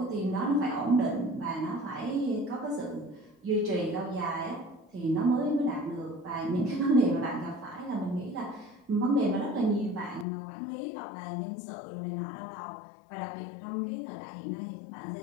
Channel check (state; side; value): drops out; right; at 10.2 s